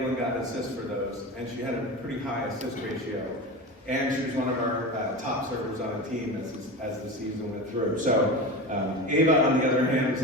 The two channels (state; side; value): normal; both; correlation 0.26